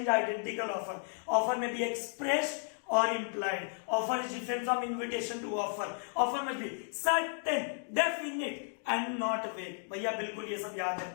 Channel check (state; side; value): silent; right; 55 dB below the other